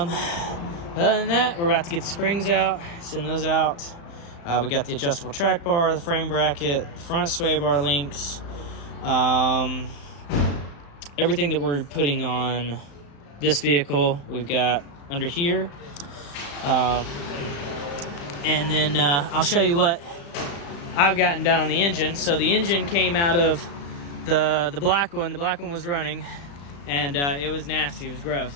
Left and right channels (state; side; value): late; right; 35 ms